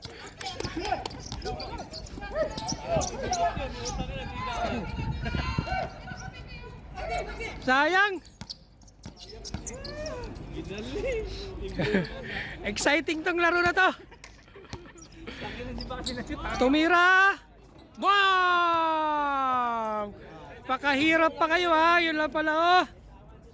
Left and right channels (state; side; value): identical; both; correlation 1.00